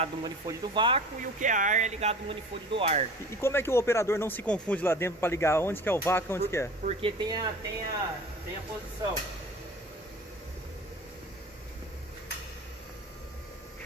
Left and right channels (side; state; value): both; normal; correlation 0.40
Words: no manifold do vácuo e o que é ar é ligado no manifold do ar. E como é que o operador não se confunde lá dentro para ligar onde que é o vácuo e onde que é? Porque tem a posição.